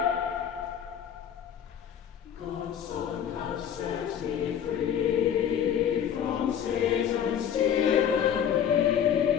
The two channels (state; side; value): quieter; right; 8.9 dB